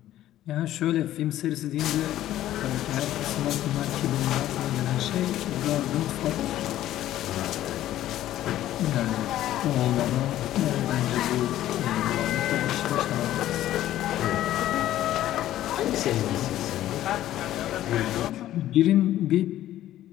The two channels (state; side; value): quieter; right; 13.3 dB